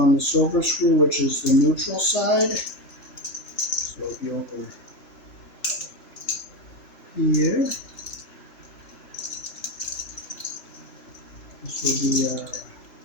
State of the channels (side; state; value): right; late; 3.4 ms